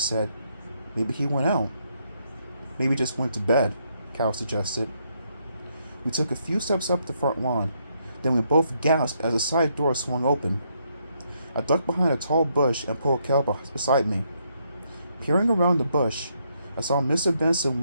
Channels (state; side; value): inverted; both; correlation -0.75